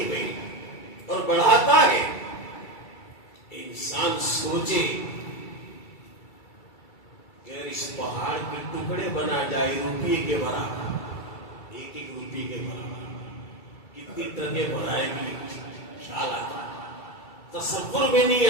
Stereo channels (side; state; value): right; late; 2.3 ms